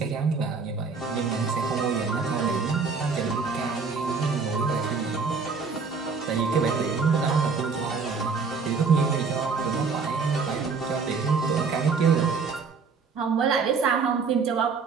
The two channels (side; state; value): left; quieter; 5.0 dB